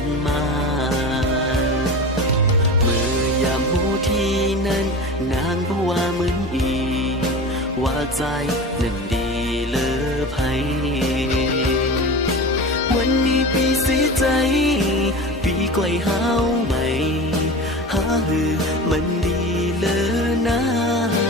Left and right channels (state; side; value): normal; both; correlation 0.31